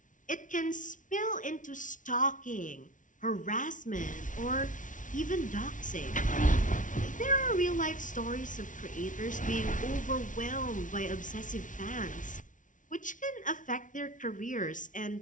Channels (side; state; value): right; late; 0.37 ms